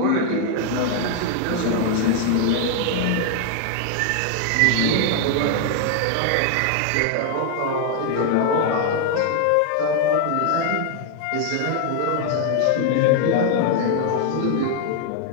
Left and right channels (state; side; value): different; both; correlation 0.00